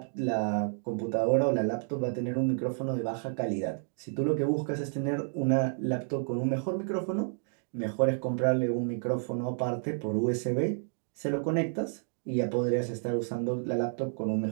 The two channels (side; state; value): left; silent; digital silence